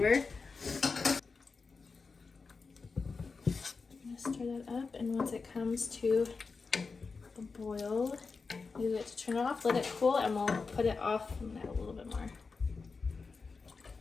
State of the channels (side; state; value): right; quieter; 4.6 dB